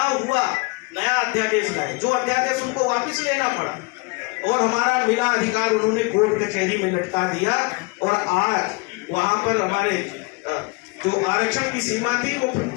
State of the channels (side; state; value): right; quieter; 28.5 dB